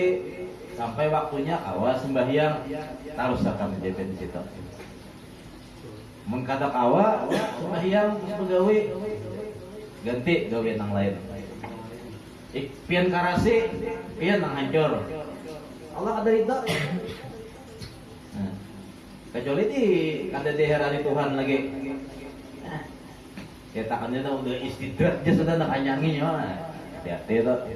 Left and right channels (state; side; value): identical; both; correlation 1.00